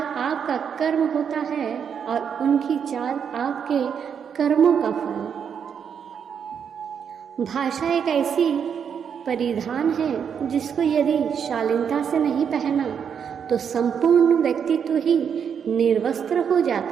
आपका कर्म होता है और उनकी चाल आपके कर्मों का फल। भाषा एक ऐसी परिधान है जिसको यदि शालीनता से नहीं पहना तो संपूर्ण व्यक्तित्व ही निर्वस्त्र हो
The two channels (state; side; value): quieter; left; 7.4 dB